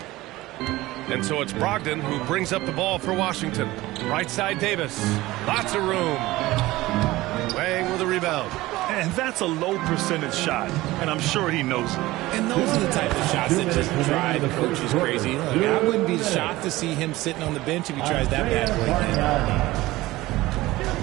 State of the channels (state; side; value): quieter; left; 18.4 dB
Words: And so it's Brogdon who brings up the ball for Washington. Right side Davis. Lots of room. Wang with a rebound. And that's a low percentage shot, and I'm sure he knows it. And those are the type of shots that just drive the coaches crazy. Look, I wouldn't be shocked to see him sitting on the bench if he tries that bad play again.